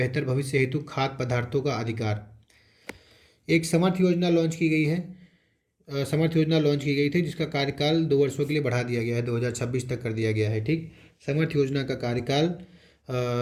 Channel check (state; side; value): identical; both; correlation 1.00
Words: भविष्य हेतु खाद्य पदार्थों का अधिकार। एक समर्थ योजना लॉन्च की गई है। समर्थ योजना लॉन्च की गई थी, जिसका कार्यकाल 2 वर्षों के लिए बढ़ा दिया गया है, 2026 तक कर दिया गया है। ठीक, समर्थ योजना का कार्यकाल